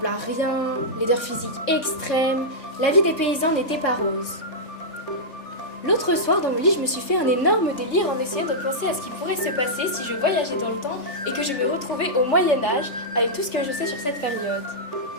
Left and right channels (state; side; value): late; right; 3.4 ms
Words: à rien, laideur physique extrême, la vie des paysans n'était pas rose. L'autre soir, dans mon lit, je me suis fait un énorme délire en essayant de penser à ce qui pourrait se passer si je voyageais dans le temps et que je me retrouvais au Moyen-Âge avec tout ce que je sais sur cette période.